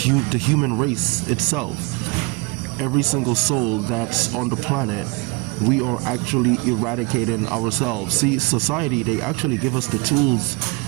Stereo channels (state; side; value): quieter; left; 27.8 dB